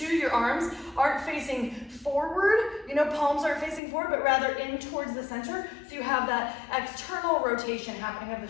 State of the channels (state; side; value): drops out; right; at 3.8 s